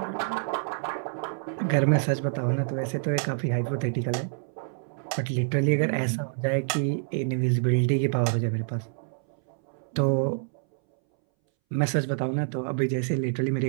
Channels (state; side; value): silent; left; 60 dB below the other